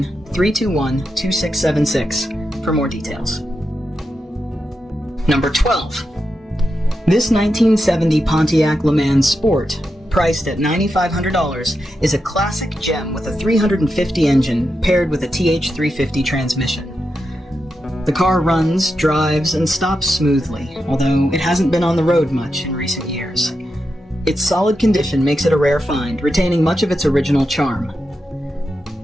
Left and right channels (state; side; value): normal; both; correlation 0.87